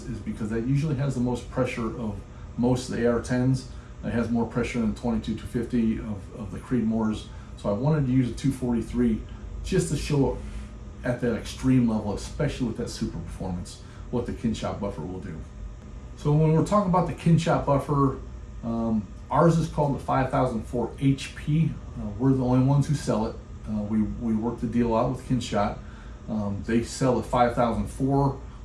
is because that usually has the most pressure of most of the AR-10s. It has more pressure than 22-250 of the Creedmoors. So I wanted to use a 243 just to show at that extreme level, especially with that super performance, what the Kyn-shot buffer will do. So when we're talking about the Kyn-shot buffer, ours is called the 5004 HP. We're the only ones who sell it. We work the deal out with Kyn-shot. They sell the 5004,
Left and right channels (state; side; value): identical; both; correlation 1.00